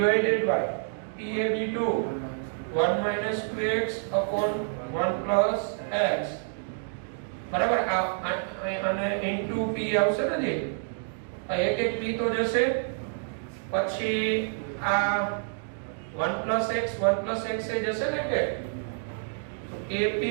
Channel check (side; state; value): left; silent; digital silence